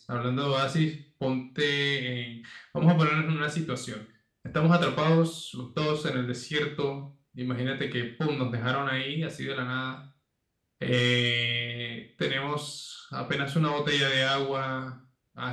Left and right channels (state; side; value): identical; both; correlation 1.00